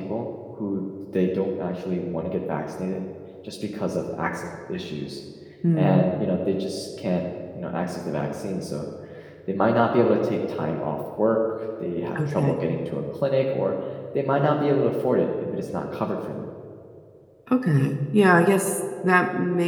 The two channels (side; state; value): both; identical; correlation 1.00